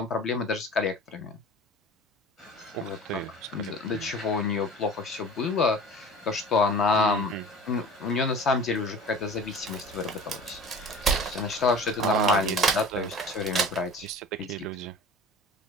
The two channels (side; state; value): both; normal; correlation 0.40